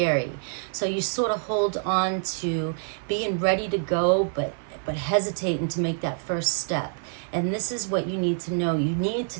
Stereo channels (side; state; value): left; silent; 55 dB below the other